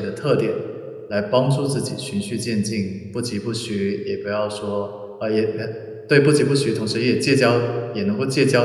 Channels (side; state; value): both; identical; correlation 1.00